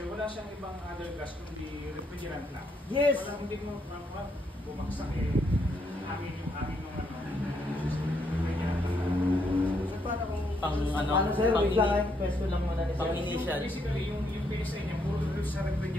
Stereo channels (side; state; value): both; normal; correlation 0.75